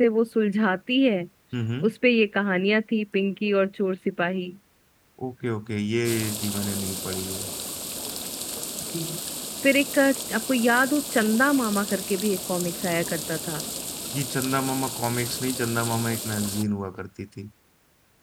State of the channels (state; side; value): identical; both; correlation 1.00